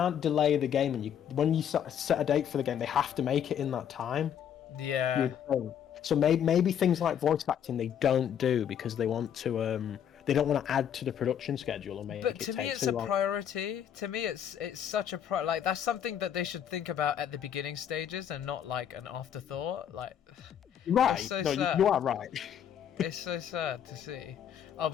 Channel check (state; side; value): quieter; right; 9.1 dB